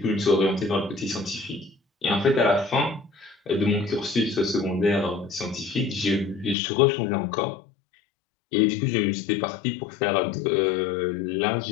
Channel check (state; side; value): drops out; right; at 6.6 s